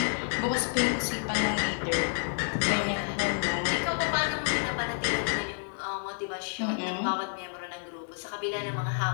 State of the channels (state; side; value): silent; right; digital silence